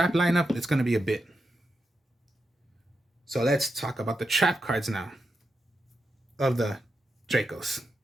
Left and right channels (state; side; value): normal; both; correlation 0.87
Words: lineup, it's going to be a bit. So let's talk about the trap cards now of the Dracos.